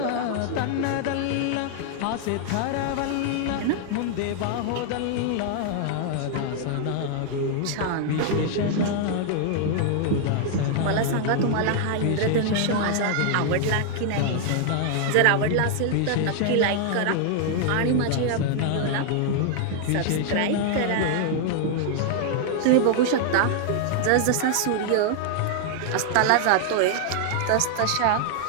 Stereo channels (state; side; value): different; both; correlation 0.00